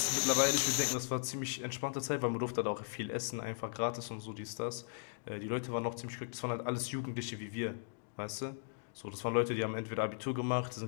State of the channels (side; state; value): right; silent; digital silence